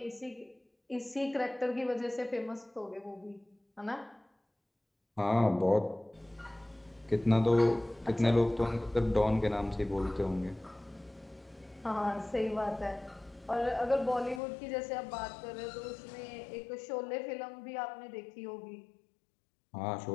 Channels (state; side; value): drops out; right; at 14.4 s